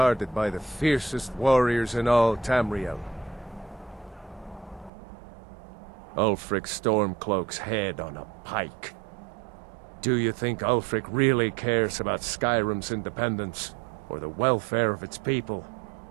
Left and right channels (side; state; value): left; drops out; at 4.9 s